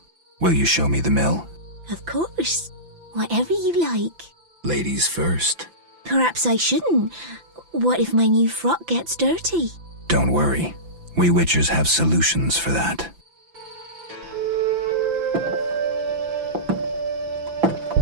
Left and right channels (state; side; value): late; left; 5.9 ms